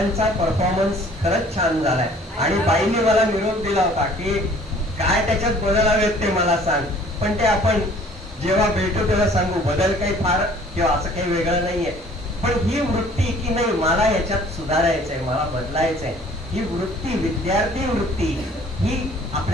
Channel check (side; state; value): both; normal; correlation 0.54